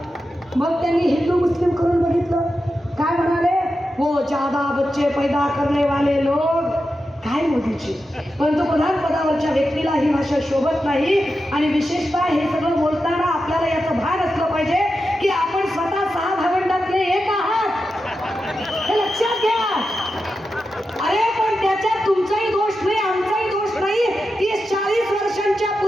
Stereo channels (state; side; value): normal; both; correlation 0.90